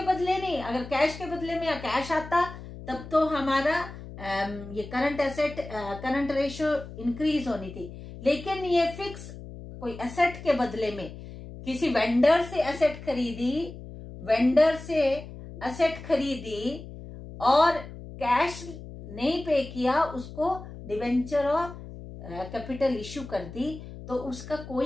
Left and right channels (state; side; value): noise; left; hum, 13 dB below the sound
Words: बदले नहीं. अगर कैश के बदले में या कैश आता तब तो हमारा ये current asset current ratio increase होनी थी, लेकिन ये फिक्स कोई एसेट के बदले में किसी वेंडर से एसेट खरीदी, वेंडर से एसेट खरीदी और कैश नहीं पे किया, उसको डिबेंचर और कैपिटल इश्यू कर दी, तो उसका